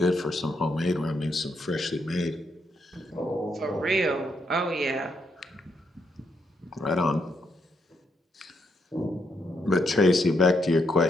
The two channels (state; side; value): normal; both; correlation 0.78